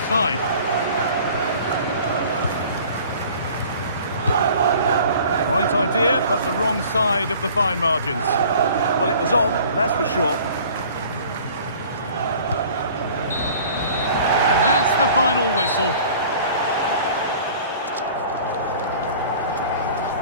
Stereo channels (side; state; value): both; inverted; correlation -0.48